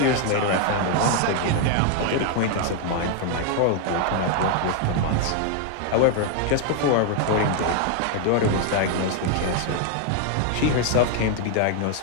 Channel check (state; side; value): different; both; correlation 0.00